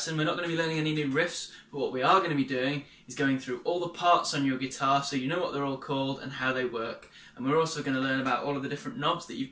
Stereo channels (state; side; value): identical; both; correlation 1.00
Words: we're not going to be learning any new riffs, but what we are going to be doing is going through all the parts on your guitar so you know what they're all called and how they work. And we're also going to learn about all of the different knobs that you've